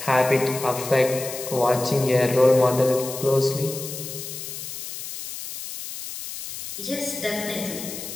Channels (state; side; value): noise; left; hiss, 9 dB below the sound